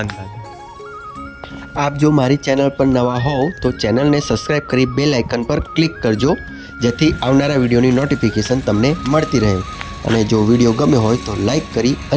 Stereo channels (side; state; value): both; identical; correlation 1.00